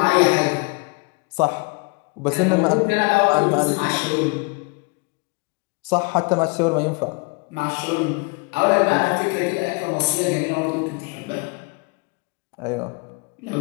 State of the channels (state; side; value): quieter; right; 30.6 dB